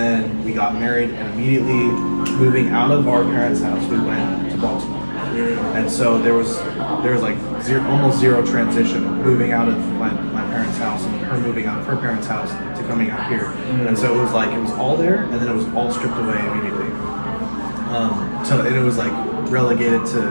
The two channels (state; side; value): inverted; both; correlation -1.00